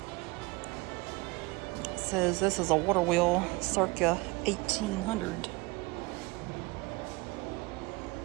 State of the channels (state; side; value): quieter; left; 24.5 dB